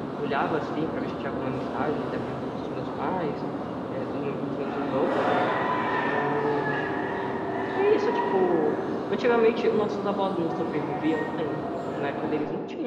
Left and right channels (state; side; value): identical; both; correlation 1.00